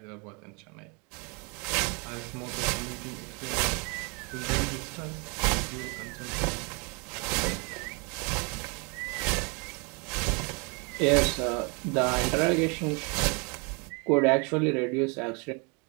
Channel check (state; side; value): quieter; left; 32.2 dB